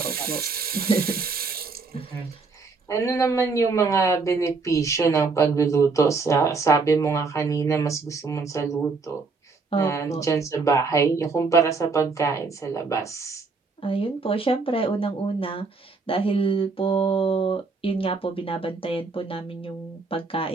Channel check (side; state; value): left; quieter; 4.2 dB